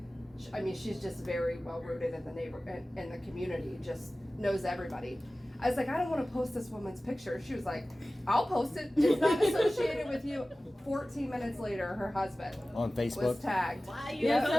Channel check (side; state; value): both; normal; correlation 0.97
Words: I mean, she's just very well rooted in the in the community, just knows everybody. I was like, I don't want to post this woman's picture. She was like, I'll post it. It's not associated with you. 14 minutes later, her husband On Facebook? was tagged. Why you Yeah,